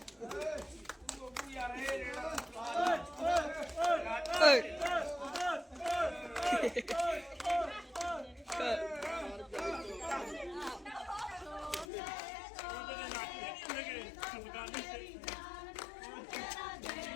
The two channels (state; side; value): drops out; right; at 11.9 s